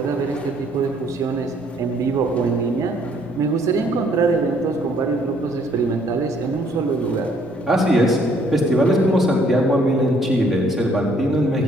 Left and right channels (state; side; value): normal; both; correlation 0.64